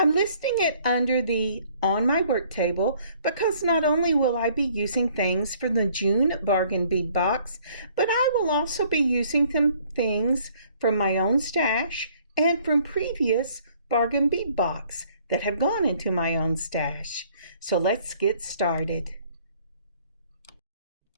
listing it under the on my work table because not only will I be using things from the June Bargain Bead Box, but I will also be using some things from my own stash and from previous Bargain Bead Box that have gone into my own stash. So let's get started.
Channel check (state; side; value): inverted; both; correlation -0.60